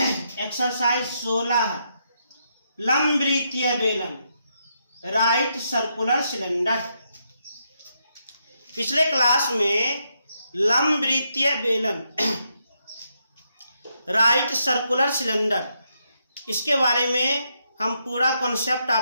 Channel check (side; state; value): both; inverted; correlation -0.80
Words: एक्सरसाइज 16, लंबवृत्तीय बेलन, राइट सर्कुलर सिलेंडर। पिछले क्लास में लंबवृत्तीय बेलन, राइट सर्कुलर सिलेंडर, इसके बारे में हम पूरा कॉन्सेप्ट